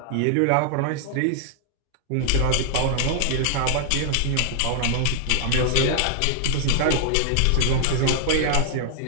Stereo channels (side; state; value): both; different; correlation -0.01